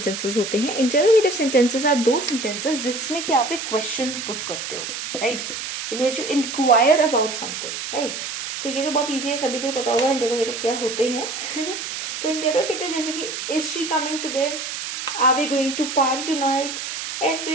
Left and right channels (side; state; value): right; noise; hiss, 6 dB below the sound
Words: होते हैं? Interrogative sentences are those sentences जिसमें कि आप एक क्वेश्चन पुट करते हो, right, in which you inquire about something, right. तो ये तो बहुत ईजी है, सभी को पता होगा इंटेरोगेटिव क्या होते हैं। तो इंटेरोगेटिव जैसे कि is she coming today, are we going to party tonight,